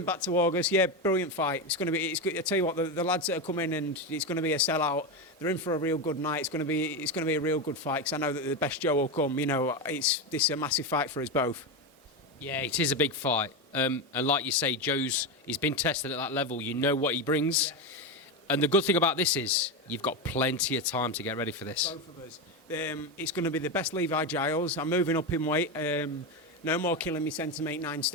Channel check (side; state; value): both; normal; correlation 0.14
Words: back to August, yeah, brilliant fight. It's going to be. I tell you what, the lads that are coming and it's going to be a sellout. They're in for a real good night. It's going to be a real good fight because I know that the best Joe will come. This is a massive fight for us both. Yeah, it is a big fight. And like you say, he's been tested at that level. You know what he brings. Yeah. And the good thing about this is you've got plenty of time to get ready for this. Both of us. It's going to be the best Levi Giles. I'm moving up in weight. No more killing me centimetre 9